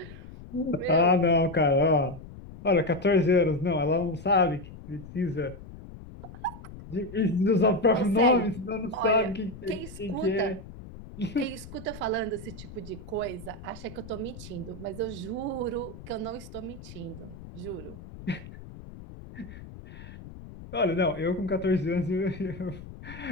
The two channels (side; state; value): left; noise; rumble, 15 dB below the sound